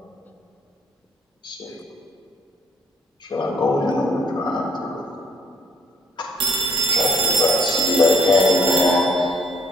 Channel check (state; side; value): normal; both; correlation 0.62